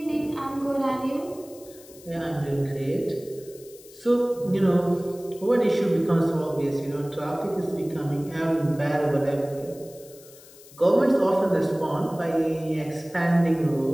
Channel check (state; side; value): noise; left; hiss, 22 dB below the sound